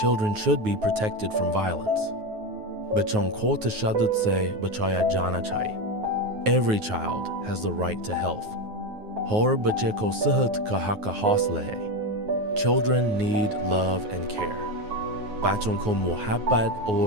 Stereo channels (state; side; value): late; left; 9.4 ms